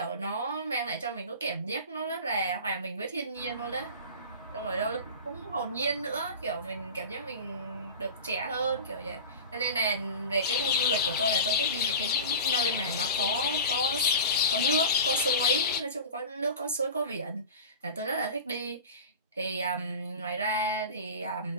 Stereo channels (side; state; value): both; inverted; correlation -0.32